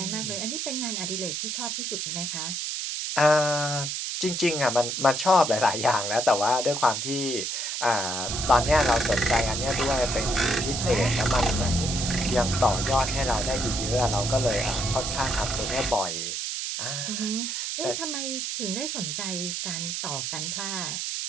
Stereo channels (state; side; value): noise; right; hiss, 3 dB below the sound